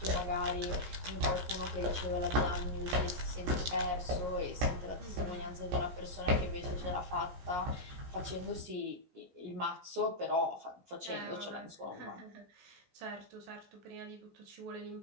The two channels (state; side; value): late; left; 17 ms